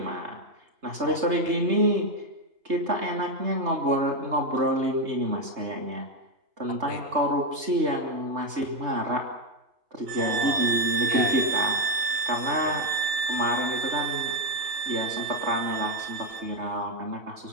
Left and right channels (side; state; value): left; late; 3.3 ms